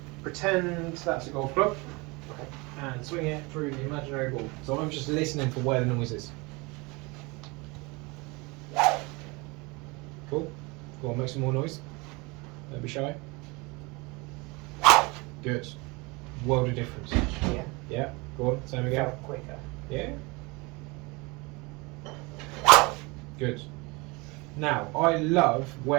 pretend that's a golf club and swing it through the imaginary ball. So I'm just listening for where the noise is. Cool. Go on, make some more noise. Don't be shy. Good. World of difference. Yeah. Yeah. Go on, same again. Felt quicker. Yeah. Good. Now, I love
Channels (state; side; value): quieter; left; 26.2 dB